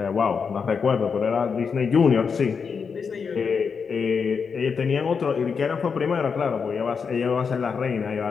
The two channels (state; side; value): quieter; right; 5.8 dB